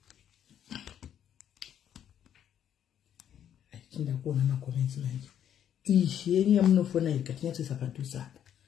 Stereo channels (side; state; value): right; quieter; 9.7 dB